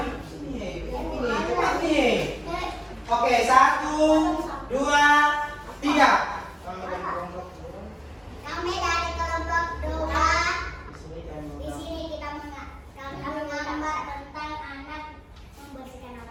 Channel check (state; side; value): identical; both; correlation 1.00